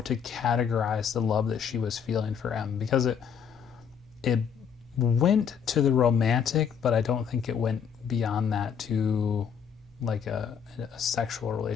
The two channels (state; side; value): quieter; right; 7.3 dB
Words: to categorize the love that she was feeling for M, because it went to the romantic, but I don't think it went beyond that to like a sexual